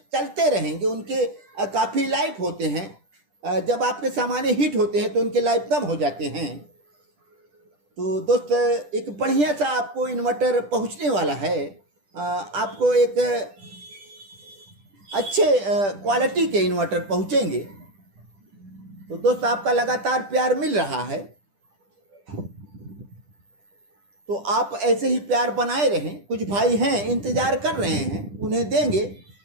रहेंगे। उनके काफ़ी लाइफ होते हैं। जब आपके सामान्य हीट होते हैं तो उनके लाइफ कम हो जाते हैं। तो दोस्त एक बढ़िया सा आपको इन्वर्टर पहुंचने वाला है। आपको एक अच्छे क्वालिटी के इन्वर्टर पहुंचेंगे। तो दोस्त आपका लगातार प्यार मिल रहा है, तो आप ऐसे ही प्यार बनाए रहें। कुछ भाई हैं इंतज़ार कर रहे हैं, उन्हें देंगे।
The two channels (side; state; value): left; late; 10 ms